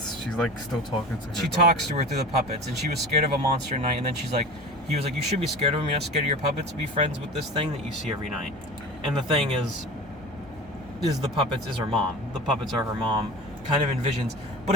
she's like still talking to her. She talks to her through the puppets, and she was scared of a monster night, and then he was like, you should be scared of him, you're not scared of your puppets, be friends with this thing that you see every night. And the thing is the puppets is her mom. The puppets are her mom, kind of envisions, but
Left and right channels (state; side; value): normal; both; correlation 0.34